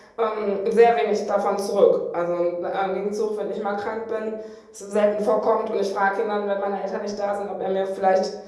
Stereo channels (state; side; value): identical; both; correlation 1.00